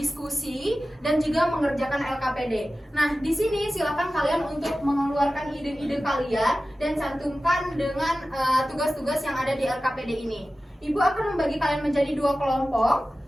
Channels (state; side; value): normal; both; correlation 0.95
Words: dan juga mengerjakan LKPD. Nah, di sini silakan kalian untuk mengeluarkan ide-ide kalian dan cantumkan dengan tugas-tugas yang ada di LKPD ini. Ibu akan membagi kalian menjadi 2 kelompok.